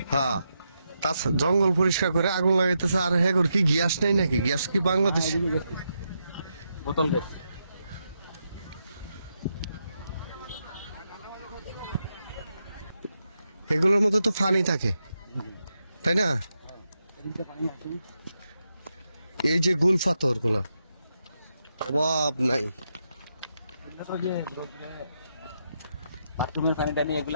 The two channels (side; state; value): both; inverted; correlation -0.84